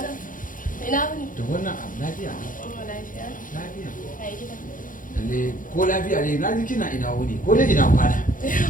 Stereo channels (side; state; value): right; late; 0.39 ms